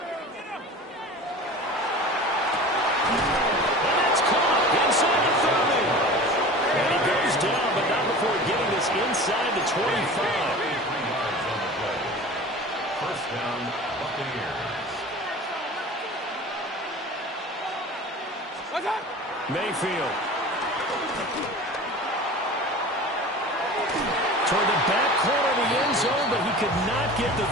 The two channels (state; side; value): normal; both; correlation 0.37